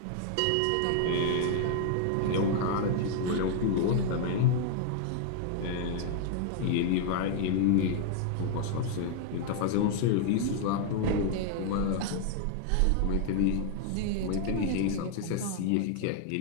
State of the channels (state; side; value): different; both; correlation 0.00